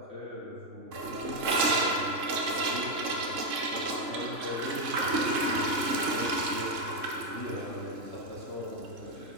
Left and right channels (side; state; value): left; late; 3.6 ms